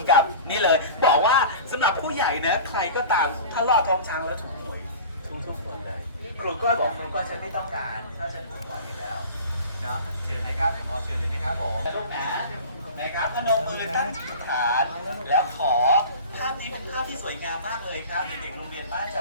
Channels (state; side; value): inverted; both; correlation -0.37